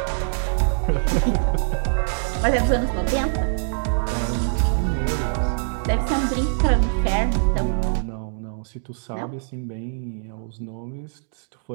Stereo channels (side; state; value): left; silent; digital silence